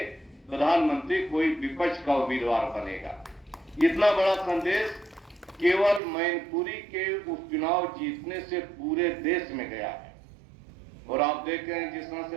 प्रधानमंत्री कोई विपक्ष का उम्मीदवार बनेगा। इतना बड़ा संदेश केवल मैनपुरी के उपचुनाव जीतने से पूरे देश में गया है। और आप देख रहे हैं जिस तरह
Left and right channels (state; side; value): drops out; left; at 6.0 s